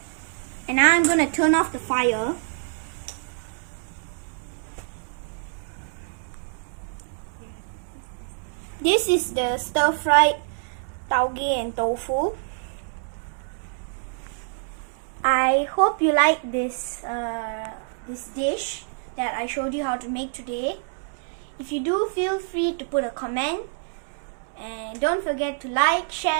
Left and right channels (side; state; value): left; silent; 61 dB below the other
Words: And now I'm gonna turn off the fire. This is the stir-fried taugeh and tofu. I hope you like this dish that I showed you how to make today. If you do, feel free to put a comment. And don't forget to like,